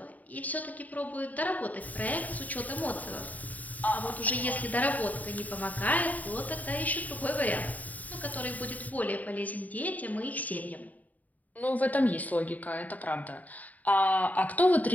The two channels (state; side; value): late; right; 0.075 ms